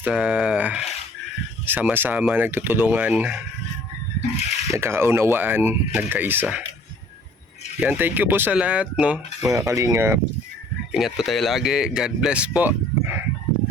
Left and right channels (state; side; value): normal; both; correlation 0.55